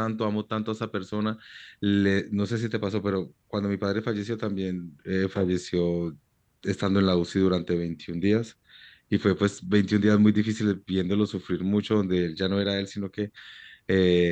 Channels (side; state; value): both; identical; correlation 1.00